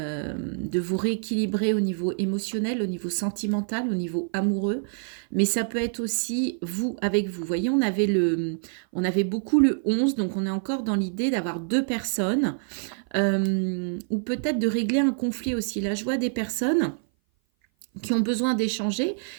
vous rééquilibrer au niveau émotionnel, au niveau sentimental, au niveau amoureux. Mais ça peut être aussi vous avec vous. Vous voyez, on avait beaucoup le 11, donc on est encore dans l'idée d'avoir deux personnes, ou peut-être de régler un conflit aussi. Là, je vois des personnes qui ont besoin d'échanger,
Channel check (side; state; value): left; silent; 57 dB below the other